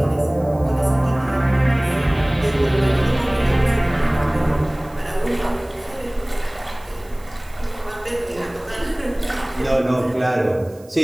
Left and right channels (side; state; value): right; noise; hiss, 27 dB below the sound